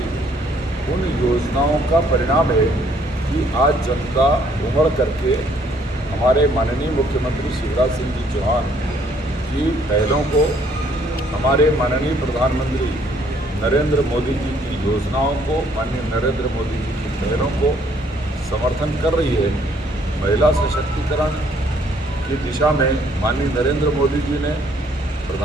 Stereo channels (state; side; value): normal; both; correlation 0.65